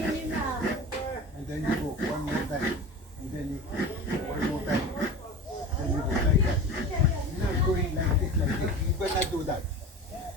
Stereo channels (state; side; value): normal; both; correlation 0.33